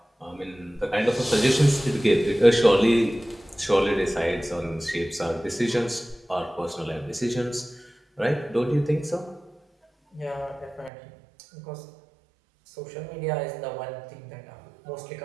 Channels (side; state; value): left; drops out; at 10.9 s